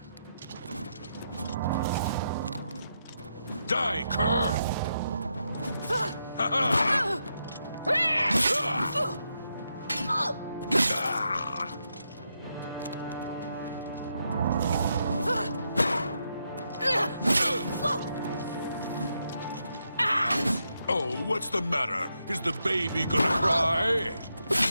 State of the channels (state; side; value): inverted; both; correlation -0.82